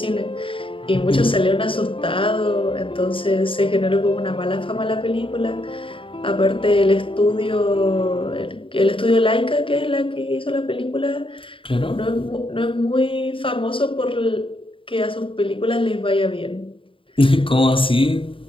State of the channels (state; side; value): late; right; 0.25 ms